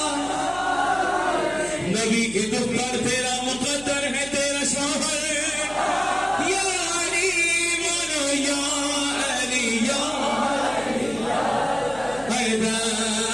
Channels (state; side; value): noise; left; hum, 19 dB below the sound